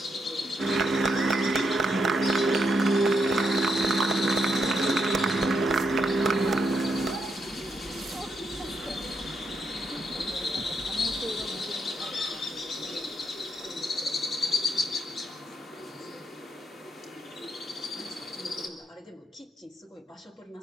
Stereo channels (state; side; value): normal; both; correlation 0.79